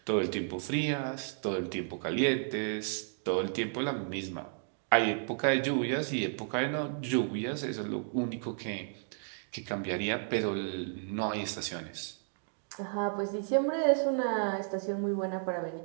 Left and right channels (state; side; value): silent; left; digital silence